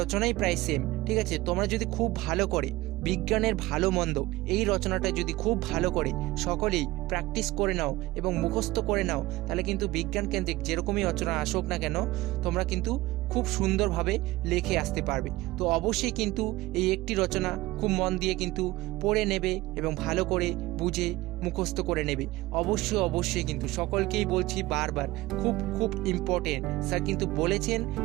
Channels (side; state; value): left; quieter; 18.7 dB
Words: প্রায় সেম, ঠিক আছে। তোমরা যদি খুব ভালো করে বিজ্ঞানের ভালো মন্দ এই রচনাটা যদি খুব ভালো করে সকলেই প্র্যাকটিস করে নাও এবং মুখস্থ করে নাও, তাহলে কিন্তু বিজ্ঞান কেন্দ্রিক যেরকমই রচনা আসুক না কেন তোমরা কিন্তু খুব সুন্দরভাবে লিখে আসতে পারবে। তো অবশ্যই কিন্তু এই একটি রচনা খুব মন দিয়ে কিন্তু পড়ে নেবে এবং ভালো করে বুঝে মুখস্থ করে নেবে। অবশ্যই অবশ্যই কিন্তু সকলকেই বলছি বারবার, খুব খুব ইম্পর্টেন্ট, স্যার কিন্তু বলেছেন